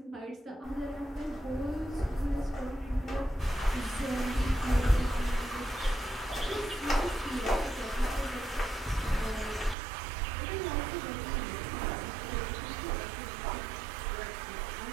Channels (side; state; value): left; drops out; at 9.8 s